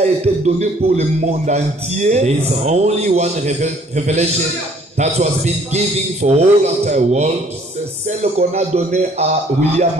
été donnée pour le monde entier. There is only one revelation that was been given for all entire world. C'est celle qu'on a donnée à William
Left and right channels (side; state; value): both; normal; correlation 0.59